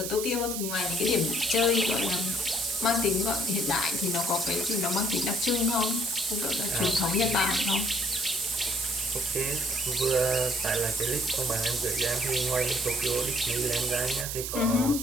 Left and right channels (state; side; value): noise; right; hiss, 4 dB below the sound